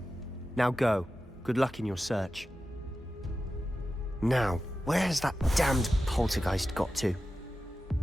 Now go. Good luck in your search. Now, where's that damned poltergeist got to?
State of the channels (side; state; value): both; normal; correlation 0.93